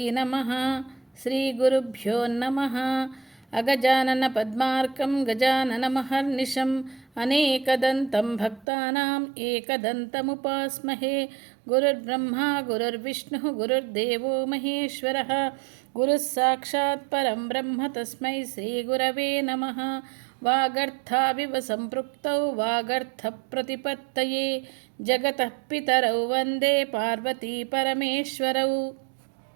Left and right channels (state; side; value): drops out; left; at 8.7 s